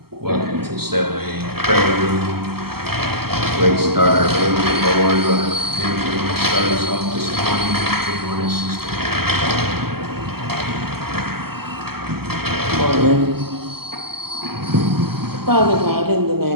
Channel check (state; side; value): late; left; 0.95 ms